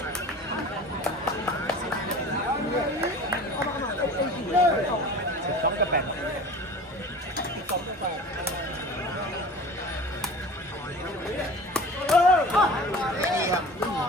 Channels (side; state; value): both; normal; correlation 0.39